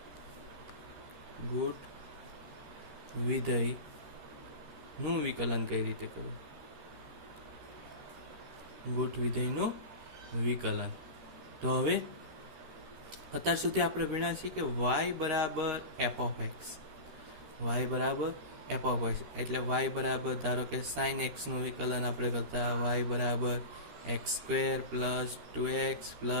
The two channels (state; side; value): late; left; 13 ms